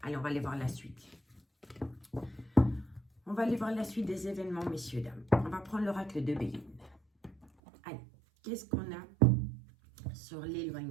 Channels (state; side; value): drops out; left; at 7.5 s